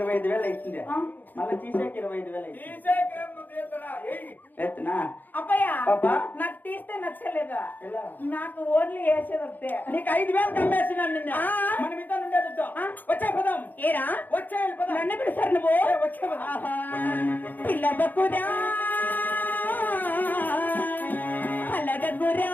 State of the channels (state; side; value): late; right; 0.086 ms